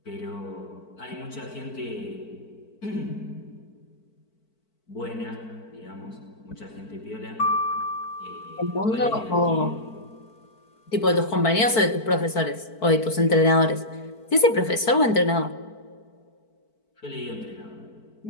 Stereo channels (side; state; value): right; late; 4.5 ms